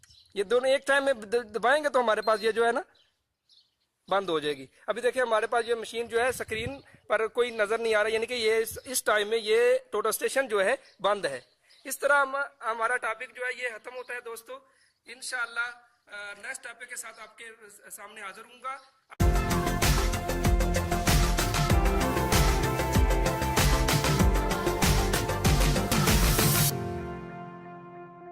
ये दोनों एक टाइम में दबाएंगे तो हमारे पास ये जो है ना बंद हो जाएगी। अभी देखिए हमारे पास ये मशीन जो है स्क्रीन पर कोई नजर नहीं आ रहा, यानी कि ये इस टाइम में ये टोटल स्टेशन जो है बंद है। इस तरह हमारा टॉपिक जो है ये खत्म होता है दोस्तों। इंशाअल्लाह नेक्स्ट टॉपिक के साथ आपके सामने हाजिर हूँगा।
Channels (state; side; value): identical; both; correlation 1.00